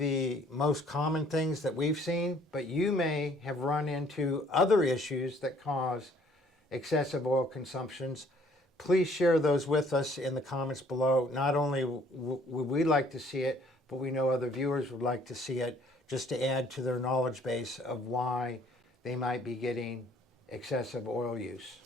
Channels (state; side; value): normal; both; correlation 0.60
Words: most common things that we've seen, but you may have run into other issues that cause excessive oil consumptions. Please share those with us in the comments below. Not only would we like to see it, but we know other viewers would like to see it, just to add to their knowledge base of why they might be getting excessive oil use.